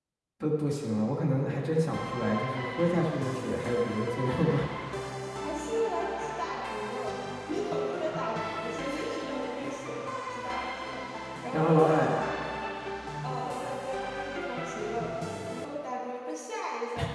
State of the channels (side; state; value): both; identical; correlation 1.00